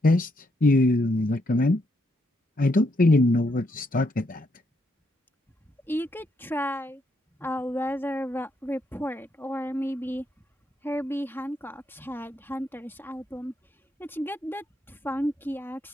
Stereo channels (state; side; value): normal; both; correlation 0.77